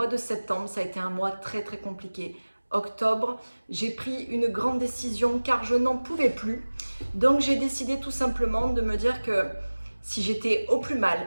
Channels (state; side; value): inverted; both; correlation -1.00